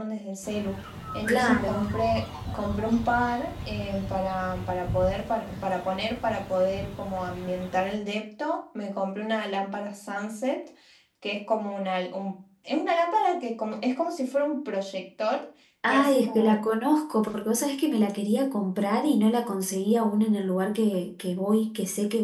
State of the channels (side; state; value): both; identical; correlation 1.00